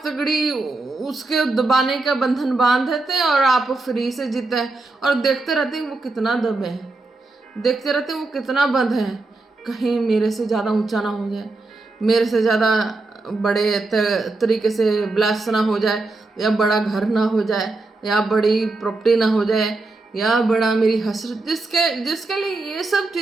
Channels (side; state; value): left; quieter; 3.3 dB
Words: तगड़ी उसके दबाने का बंधन बांध देते हैं और आप फ्री से जीते हैं। और देखते रहते हैं वो कितना दबे हैं, देखते रहते हैं वो कितना बंद है, कहीं मेरे से ज़्यादा ऊंचा ना हो जाए, मेरे से ज़्यादा बड़े तरीके से ब्लास्ट ना हो जाए, या बड़ा घर ना हो जाए, या बड़ी प्रॉपर्टी ना हो जाए, या बड़ा मेरी हसरत, जिसके लिए ये सब